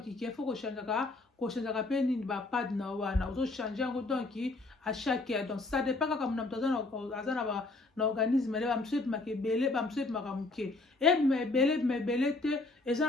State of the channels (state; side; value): quieter; right; 3.2 dB